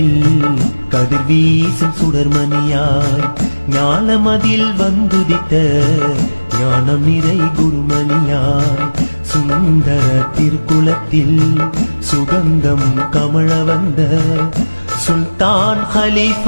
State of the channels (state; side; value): inverted; both; correlation -1.00